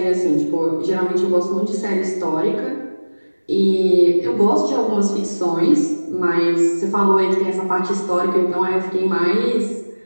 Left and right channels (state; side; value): inverted; both; correlation -1.00